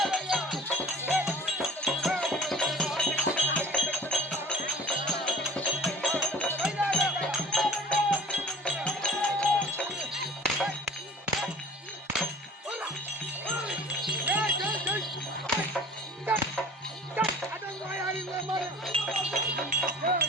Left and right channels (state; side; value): normal; both; correlation 0.45